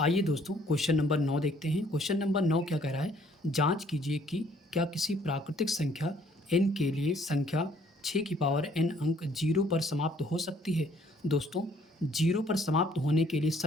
दोस्तों क्वेश्चन नंबर 9 देखते हैं। क्वेश्चन नंबर 9 क्या कह रहा है, जांच कीजिए कि क्या किसी प्राकृतिक संख्या n के लिए संख्या 6 की पावर n अंक 0 पर समाप्त हो सकती है। दोस्तों 0 पर समाप्त होने के लिए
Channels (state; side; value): normal; both; correlation 0.61